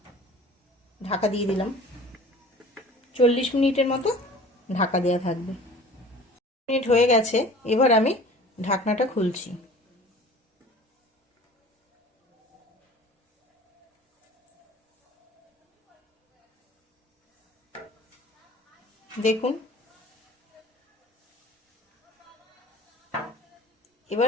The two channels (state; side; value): normal; both; correlation 0.44